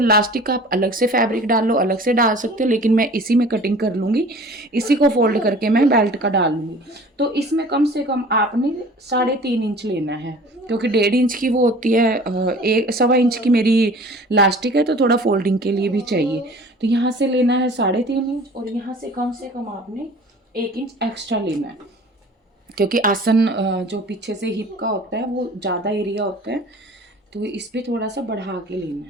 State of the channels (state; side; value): normal; both; correlation 0.45